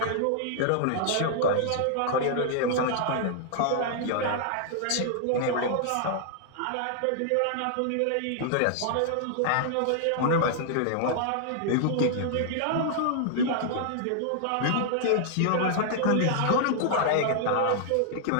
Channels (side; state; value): both; different; correlation -0.01